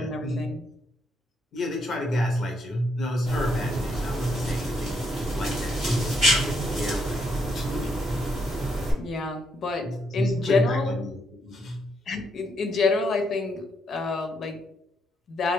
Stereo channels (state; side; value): normal; both; correlation 0.76